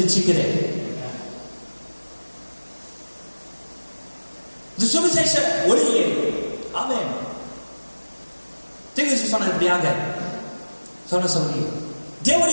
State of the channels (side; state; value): both; inverted; correlation -1.00